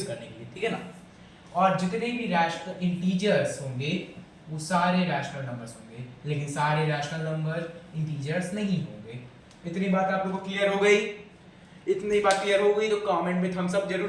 करने के लिए, ठीक है ना। और जितने भी रैशनल इंटीजर्स होंगे वो सारे रैशनल नंबर्स होंगे, लेकिन सारे रैशनल नंबर इंटीजर्स नहीं होंगे। इतनी बात आप लोगों को क्लियर हो गई? इतनी बात क्लियर हो गई तो कमेंट में थम्स अप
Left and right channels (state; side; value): identical; both; correlation 1.00